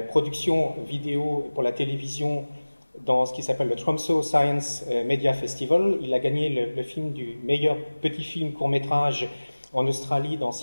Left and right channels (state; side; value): inverted; both; correlation -1.00